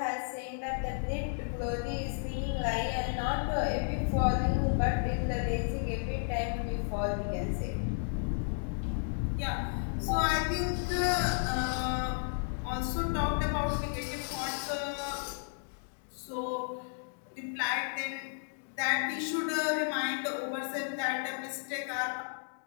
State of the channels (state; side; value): silent; right; digital silence